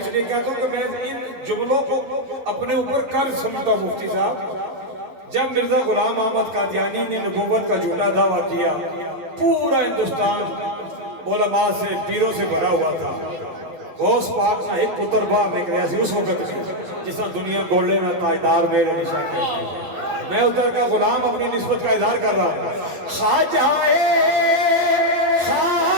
لیے کہتا ہوں کہ میں ان جملوں کو اپنے اوپر قرض سمجھتا ہوں مفتی صاحب جب مرزا غلام احمد قادیانی نے نبوت کا جھوٹا دعویٰ کیا پورا ہندوستان علماء سے پیروں سے بھرا ہوا تھا غوث پاک نہ ایک پتر باہر نکلیا سی اس وقت میں جس طرح دنیا گولے میں تاجدار میرے نشان کہتی میں ادھر کا غلام اپنی نسبت کا اظہار کر رہا ہوں خواجہ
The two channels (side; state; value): left; late; 11 ms